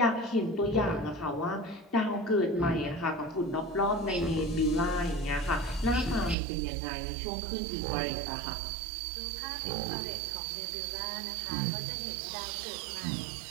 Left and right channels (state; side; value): drops out; left; at 6.4 s